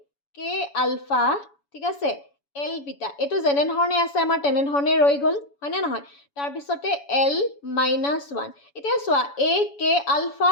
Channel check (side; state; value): right; late; 7.1 ms